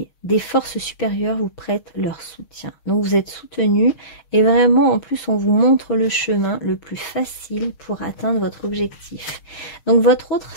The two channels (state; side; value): late; right; 6.5 ms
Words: des forces supérieures vous prêtent leur soutien. Donc vous êtes soutenu et vraiment en plus on vous montre le chemin le plus facile pour atteindre votre objectif. Donc votre autre,